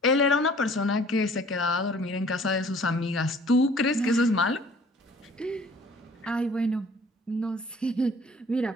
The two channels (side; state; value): both; normal; correlation 0.53